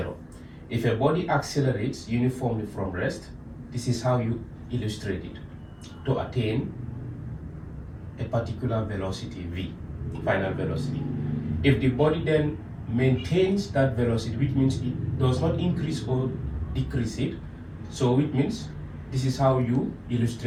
If a body accelerates uniformly from rest, this is how you illustrate it to attain a particular velocity v, final velocity. If the body then maintains that velocity, which means it does not increase or decrease it, so it means this is how you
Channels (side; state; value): both; identical; correlation 1.00